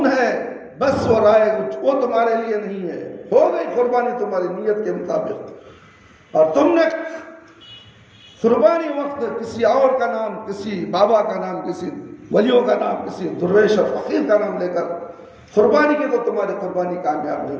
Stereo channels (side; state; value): both; identical; correlation 1.00